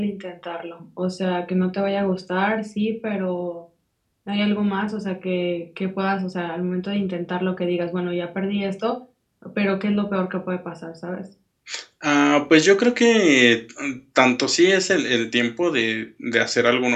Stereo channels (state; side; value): identical; both; correlation 1.00